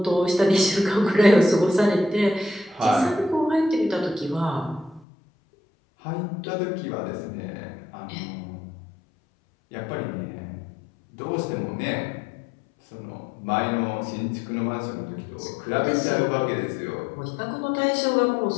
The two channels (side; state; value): right; drops out; at 5.1 s